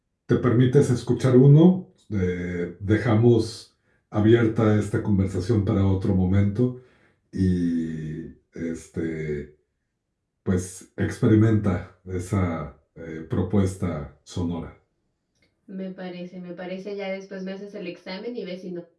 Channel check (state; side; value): identical; both; correlation 1.00